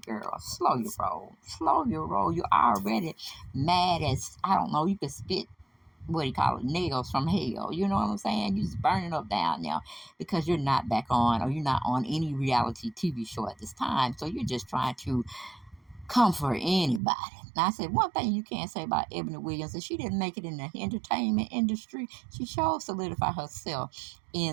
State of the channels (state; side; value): drops out; left; at 17.0 s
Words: slow your roll. Slow your roll. You're already mad as, I don't know, you could spit, what do you call it, nails from hell. You know what I'm saying? You're just burning up down now because you're not back on, or you're not on any reality TV show at this time. So you're just trying to comfort anybody. Now, I said one thing you can't say about Ebony Williams is she didn't make it in the entertainment industry. She sure solidified herself